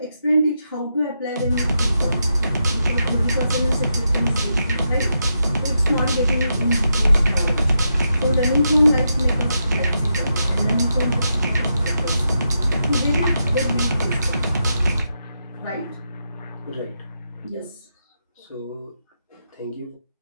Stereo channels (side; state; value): both; inverted; correlation -0.84